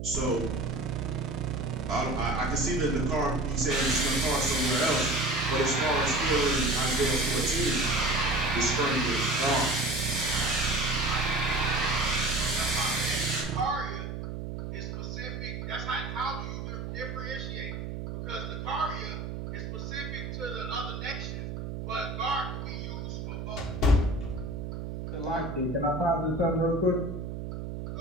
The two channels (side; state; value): right; noise; hum, 6 dB below the sound